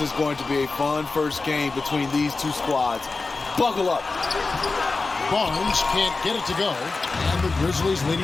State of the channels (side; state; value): right; quieter; 3.8 dB